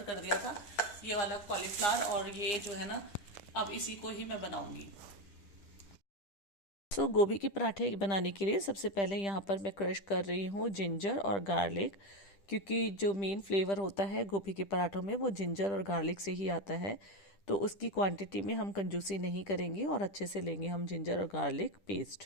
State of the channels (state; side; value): late; right; 10 ms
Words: कर दिया था ये वाला कॉलीफ्लावर, और ये जो है ना अब इसी को ही मैं बनाऊंगी। तो गोभी के पराठे बनाने के लिए सबसे पहले यहाँ पर मैं क्रश कर रही हूँ जिंजर और गार्लिक, क्योंकि जो मेन फ्लेवर होता है गोभी के पराठों में वो जिंजर और गार्लिक से ही आता है। तो उसकी क्वांटिटी में हम कंजूसी नहीं करेंगे और अच्छे से लेंगे हम जिंजर और गार्लिक